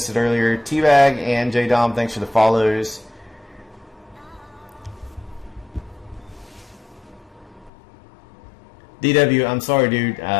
it earlier. T-Bag and J-Dom, thanks for the follows. DW, I'm sorry, dude.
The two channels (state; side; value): drops out; right; at 7.7 s